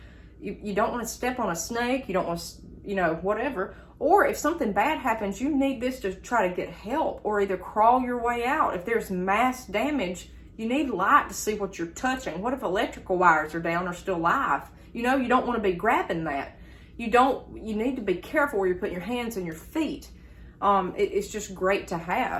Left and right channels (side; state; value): both; identical; correlation 1.00